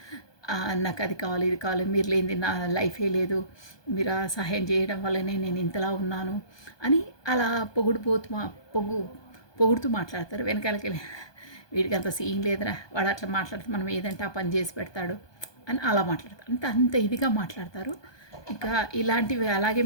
నాకు అది కావాలి, ఇది కావాలి, మీరు లేనిది నా లైఫే లేదు, మీరు సహాయం చేయడం వల్లనే నేను ఇంతలా ఉన్నాను అని అలా పొగుడుతూ మాట్లాడతారు. వెనకాలకి వెళ్ళి వీడికి అంత సీన్ లేదురా, వాడు అట్లా మాట్లాడితే మనం ఏదంటే ఆ పని చేసి పెడతాడు అని అలా మాట్లాడతారు. అంత ఇదిగా మాట్లాడతారు. ఇంకా ఇలాంటివి అలాగే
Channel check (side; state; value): right; late; 1.2 ms